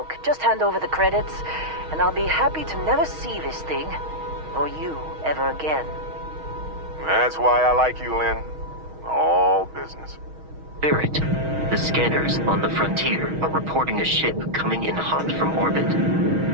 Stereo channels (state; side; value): late; left; 6.3 ms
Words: just hand over the credits, and I'll be happy to never see this thing, or you, ever again. That's why I like you, Lynn. All business. Barrett, the scanners on the frontier are reporting a ship coming in hot from orbit.